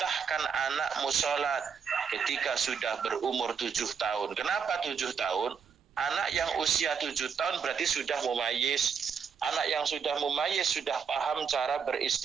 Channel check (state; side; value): quieter; left; 6.5 dB